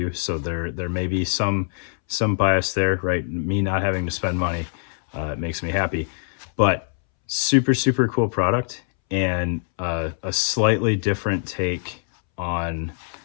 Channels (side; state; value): right; silent; 63 dB below the other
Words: so there may be some bias there, right? Me not having to spend money makes me happy, but super cool product, and a slightly different take on